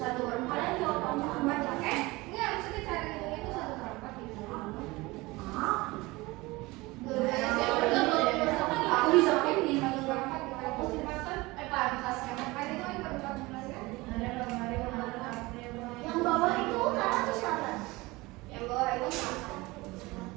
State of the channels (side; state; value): left; quieter; 22.0 dB